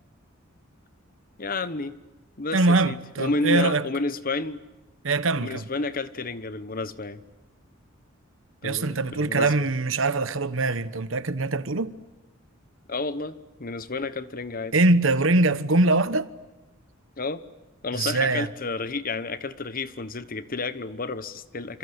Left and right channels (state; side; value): normal; both; correlation 0.21